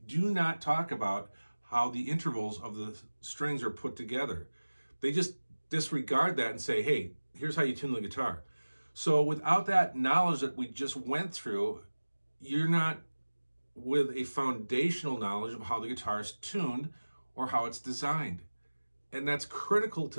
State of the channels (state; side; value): inverted; both; correlation -1.00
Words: not talk about how the intervals of the strings are put together. They just disregard that and say, hey, here's how you tune the guitar. So without that knowledge that we just went through, you're not with a foundational knowledge of how the guitar is tuned or how it's designed. And that's critical